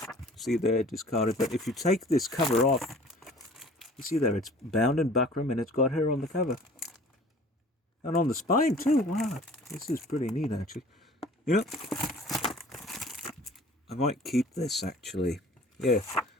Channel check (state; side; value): normal; both; correlation 0.48